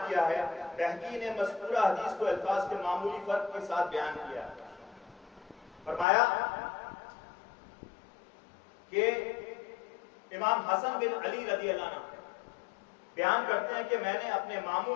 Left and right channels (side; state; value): right; drops out; at 6.1 s